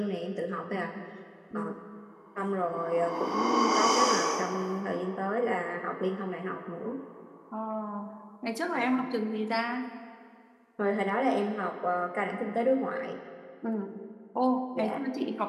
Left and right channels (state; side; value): identical; both; correlation 1.00